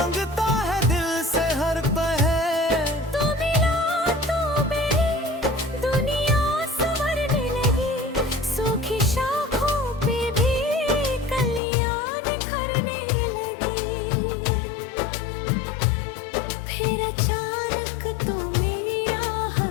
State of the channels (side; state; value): right; drops out; at 11.6 s